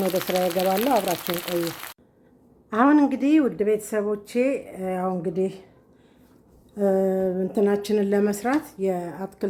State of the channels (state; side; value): identical; both; correlation 1.00